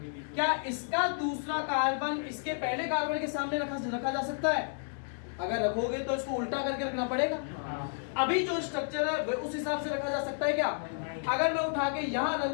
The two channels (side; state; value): right; silent; digital silence